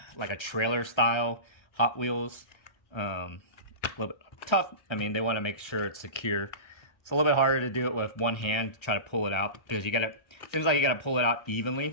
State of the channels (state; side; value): late; right; 1.3 ms